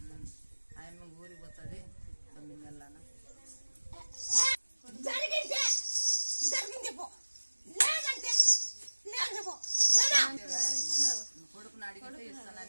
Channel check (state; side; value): inverted; both; correlation -1.00